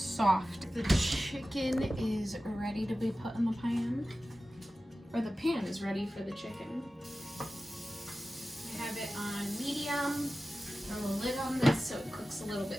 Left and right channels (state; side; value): normal; both; correlation 0.95